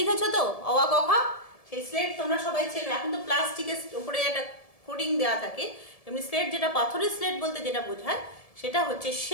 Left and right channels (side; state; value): right; late; 1.7 ms